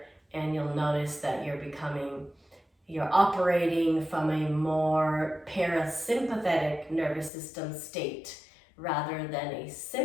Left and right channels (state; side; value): drops out; right; at 7.3 s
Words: and you'll notice that you're operating from a more parasympathetic nervous system state rather than a